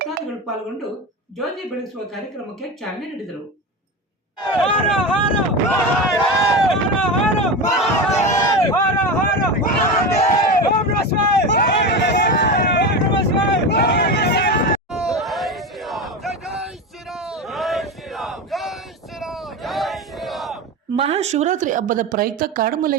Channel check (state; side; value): normal; both; correlation 0.22